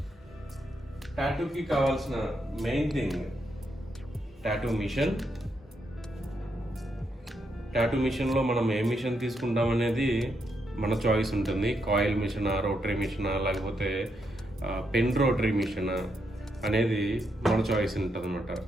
టాటూకి కావాల్సిన main thing tattoo machine. Tattoo మిషన్లో మనం ఏ మిషన్ తీసుకుంటాం అనేది మన చాయిస్ ఉంటుంది. కాయిల్ మిషనా, రోటరీ మిషనా, లేకపోతే పెన్ రోటరీ మిషనా అనేది మన చాయిస్ ఉంటుంది అనమాట.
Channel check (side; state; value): both; normal; correlation 0.80